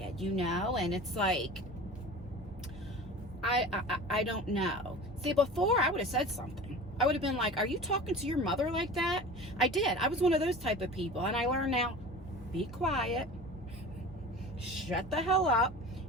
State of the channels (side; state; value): both; normal; correlation 0.37